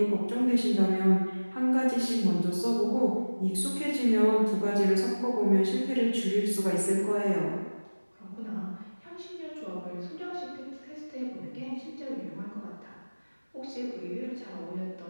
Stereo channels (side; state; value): both; inverted; correlation -1.00